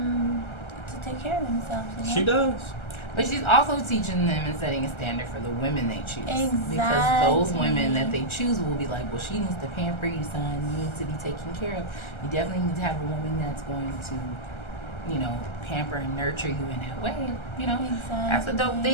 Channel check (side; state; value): right; late; 1.3 ms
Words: to take care of themselves. She does. But she's also teaching them and setting a standard for the women they choose. Exactly. Because those women that they choose will be like, well, she needs to pamper you, son. You need to be taken care of. You definitely need to have a woman that's going to, pamper and nurture you in that way. That's a dope